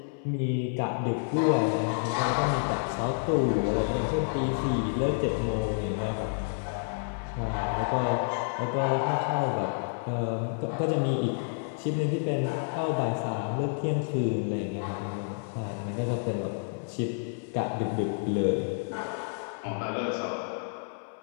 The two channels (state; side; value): silent; right; 58 dB below the other